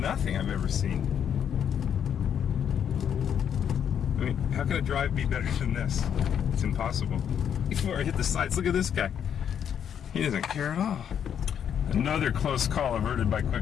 I've ever seen. I mean, how can a drive be better than this? It's impossible. Before I hit the sides, look at this guy. He doesn't care at all. Another close call averted by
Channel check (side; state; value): right; quieter; 8.6 dB